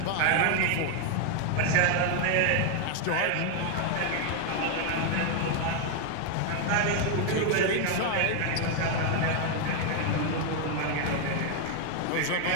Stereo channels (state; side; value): different; both; correlation 0.01